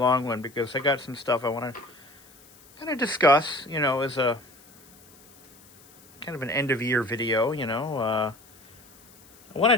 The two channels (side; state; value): left; noise; hiss, 26 dB below the sound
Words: one because I got some stuff I want to kind of discuss, as a kind of an end-of-year video, I